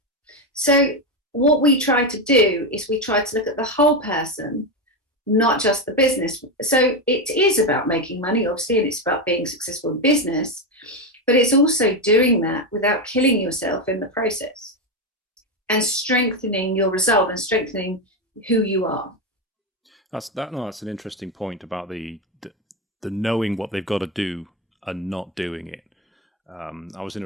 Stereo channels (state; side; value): normal; both; correlation 0.11